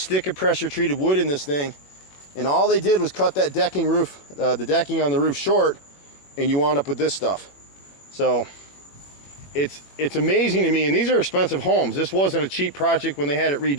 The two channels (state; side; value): late; right; 21 ms